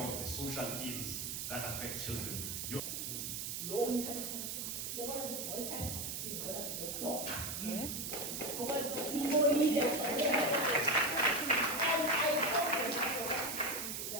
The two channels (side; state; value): right; noise; hiss, 4 dB below the sound